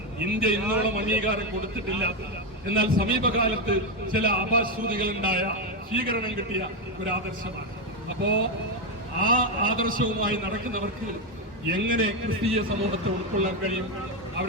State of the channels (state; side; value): normal; both; correlation 0.07